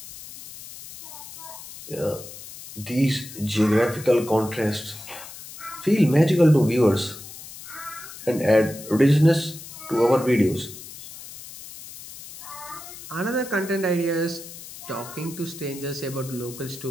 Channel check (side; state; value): left; noise; hiss, 14 dB below the sound